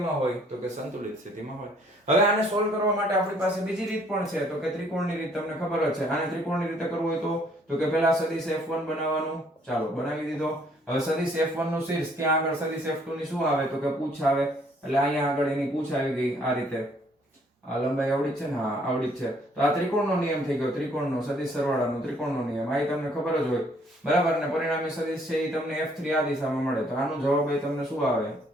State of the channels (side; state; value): both; normal; correlation 0.63